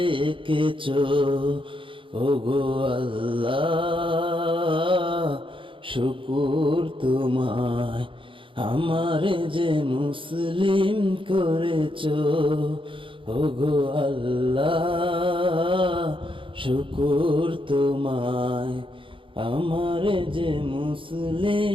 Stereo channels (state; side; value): late; left; 0.25 ms